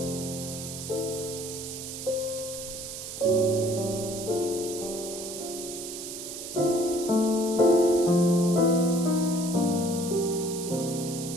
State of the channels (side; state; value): right; noise; hiss, 9 dB below the sound